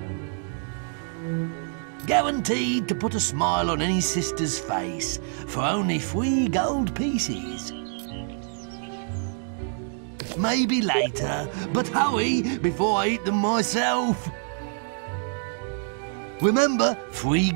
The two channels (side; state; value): left; silent; 58 dB below the other